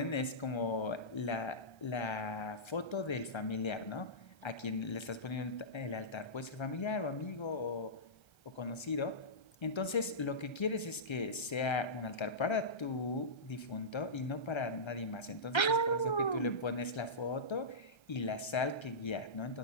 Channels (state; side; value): late; right; 1.3 ms